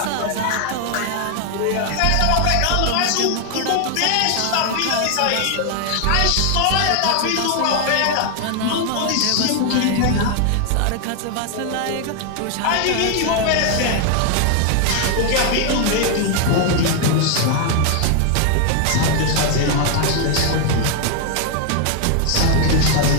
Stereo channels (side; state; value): both; different; correlation 0.00